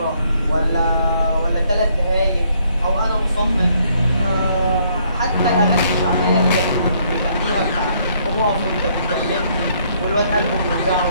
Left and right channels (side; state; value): both; inverted; correlation -0.68